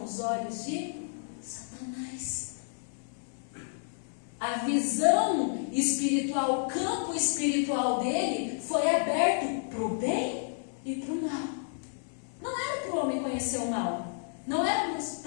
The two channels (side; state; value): right; silent; 57 dB below the other